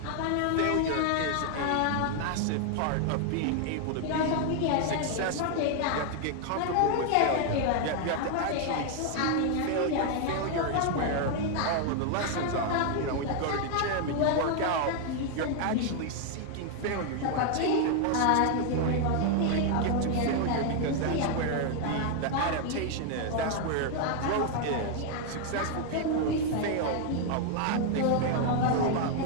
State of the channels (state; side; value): different; both; correlation 0.00